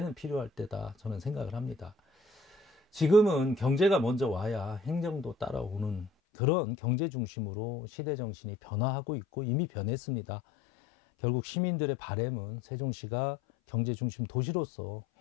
필요할 때다 저는 생각을 합니다. 지금은 경제가 먼저 와야 행정도 따라오는 그런 경제 중심으로 시대 정신이 변화하고 있고 이미 변했습니다. 결국 시민들의 바람은 세종시가 경제 중심 도시로서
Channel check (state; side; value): drops out; right; at 6.1 s